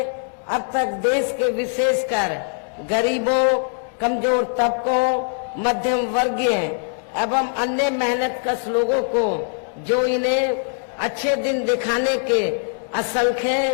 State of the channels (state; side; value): silent; right; 64 dB below the other